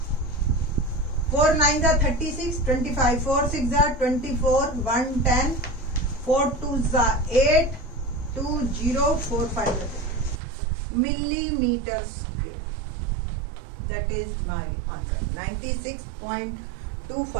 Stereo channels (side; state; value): left; drops out; at 10.4 s